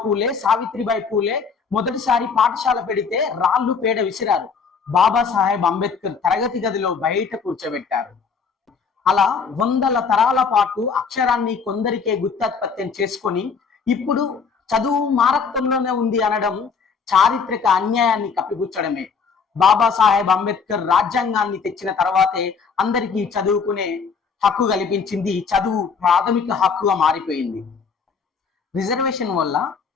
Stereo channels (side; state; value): right; quieter; 5.6 dB